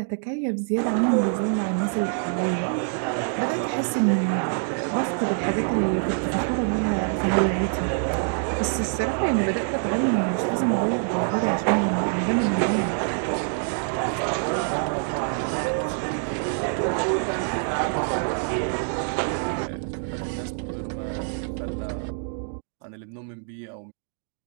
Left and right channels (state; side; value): silent; left; 61 dB below the other